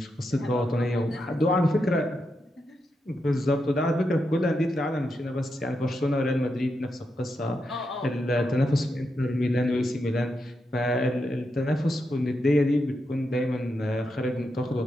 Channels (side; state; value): both; normal; correlation 0.85